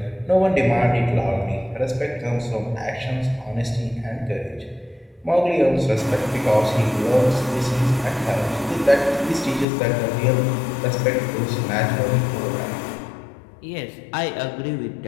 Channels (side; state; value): right; drops out; at 9.7 s